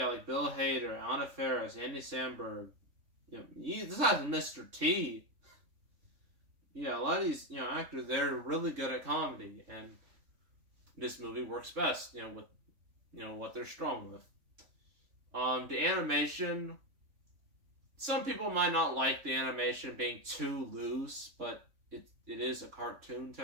Bill Hader, Anna Faris, Andy Samberg. This has Mr. T. Yeah, a lot of these, actors, they're really good at comedy, and this movie works best, with, what they're strong with. The animation, some people might not like the animation being too loose, but it is a cartoon,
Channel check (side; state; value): left; late; 3.5 ms